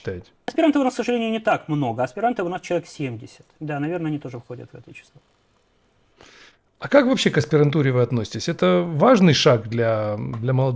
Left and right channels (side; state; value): both; identical; correlation 1.00